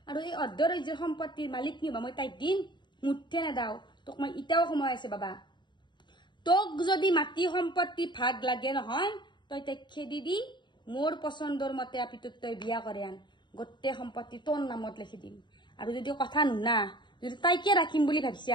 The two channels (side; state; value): right; late; 0.22 ms